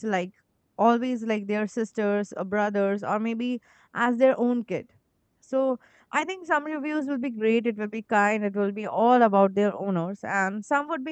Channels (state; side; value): identical; both; correlation 1.00